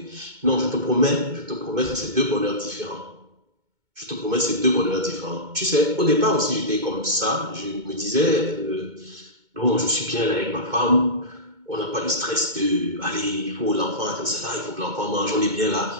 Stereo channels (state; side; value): late; left; 2.2 ms